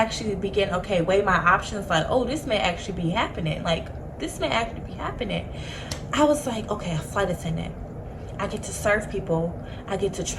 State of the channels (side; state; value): both; identical; correlation 1.00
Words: weigh my options, like, oh, this may actually be happening. I was like, okay, a flight attendant. I get to serve people. I get to